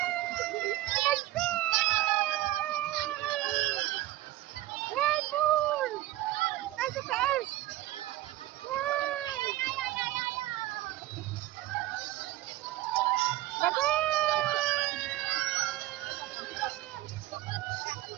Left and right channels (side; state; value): left; quieter; 15.9 dB